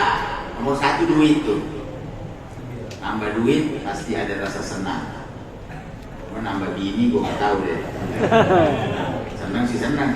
Nomor satu duit tuh. Nambah duit pasti ada rasa senang. Mau nambah bini gue gak tahu deh. Senang sih senang,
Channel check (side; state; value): both; identical; correlation 1.00